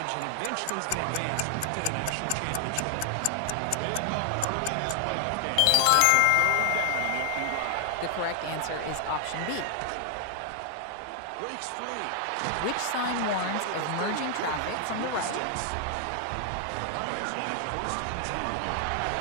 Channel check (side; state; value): both; different; correlation 0.00